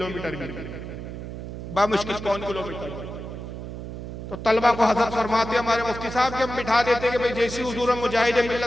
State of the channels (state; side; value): noise; right; hum, 9 dB below the sound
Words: भी, बामुश्किल 1 किलोमीटर। तो तलबा को हजरत फरमाते हमारे मुफ्ती साहब के हम बिठा देते कि भाई जैसे हुजूर मुजाहिद